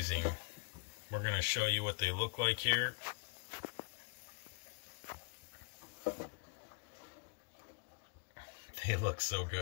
We're going to show you what they look like here. They look so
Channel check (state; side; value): quieter; right; 31.3 dB